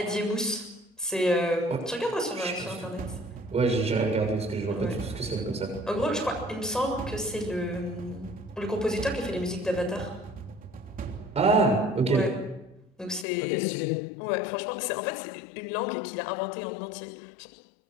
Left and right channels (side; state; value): right; drops out; at 13.2 s